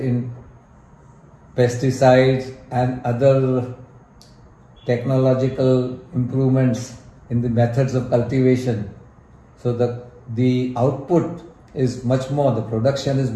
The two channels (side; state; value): both; identical; correlation 1.00